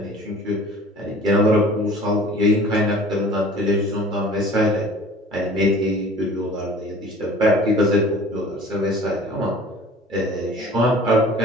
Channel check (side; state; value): both; normal; correlation 0.45